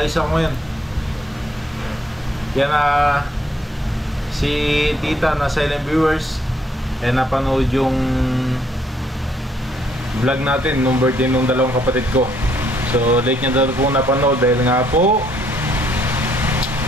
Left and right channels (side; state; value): both; normal; correlation 0.69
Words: ako ngayon. Yan si Tita na silent viewers napanood yung vlog natin nung birthday nung dalawang kapatid ko. So late niya daw po napanood dahil nga po